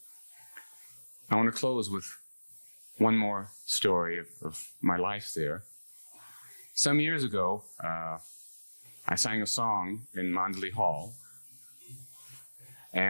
I want to close with one more story of my life there. Some years ago, I sang a song in Mandali Hall,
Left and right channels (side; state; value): both; inverted; correlation -1.00